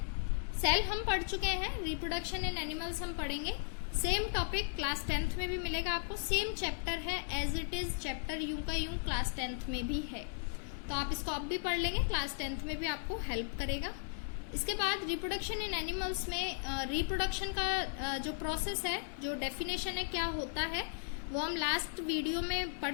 सेल हम पढ़ चुके हैं, रिप्रोडक्शन इन एनिमल्स हम पढ़ेंगे. सेम टॉपिक क्लास 10th में भी मिलेगा आपको, सेम चैप्टर है एज इट इज चैप्टर यूं का यूं क्लास 10th में भी है. तो आप इसको अब भी पढ़ लेंगे, क्लास 10th में भी आपको हेल्प करेगा. इसके बाद रिप्रोडक्शन इन एनिमल्स में रिप्रोडक्शन का जो प्रोसेस है, जो डेफिनेशन है क्या होता है, वो हम लास्ट वीडियो में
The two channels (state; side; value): silent; right; 54 dB below the other